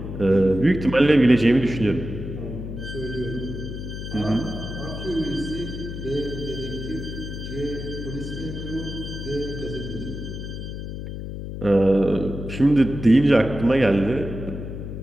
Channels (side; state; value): left; noise; hum, 7 dB below the sound